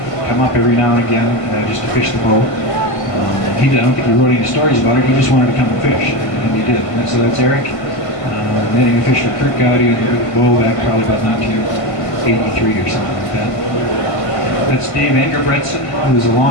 come up every now and again just to fish the Bow. I don't think he wrote any stories about it. He just wanted to come and fish, and he did. And so that's Eric netting a fish for Kurt Gowdy on the Bow back probably about 1980 83 or something like that. That's Dave Engerbretson, who was a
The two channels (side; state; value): right; late; 1.5 ms